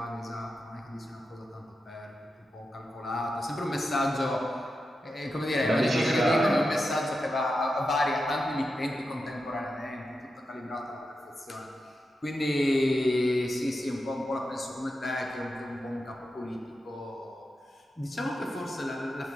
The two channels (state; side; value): normal; both; correlation 0.89